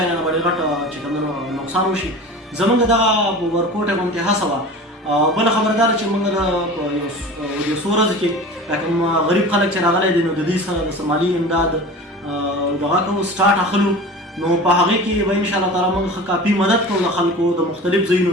نه به ډېر غټ چې کوم دی نو نقصان وشي زموږ دغه ورکوټه غوندې هڅه وه بله خبره دا ده چې موږ د یو څو ورځو کې کوم غریب خلک چې راغلی دی نو د دوی سره د مالي امداد دغه کوو سټارټ اخلو نو په هغې کې به انشاءالله تعالی موږ ښه کافي مدد کوو د خلکو د مختلف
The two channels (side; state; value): both; normal; correlation 0.36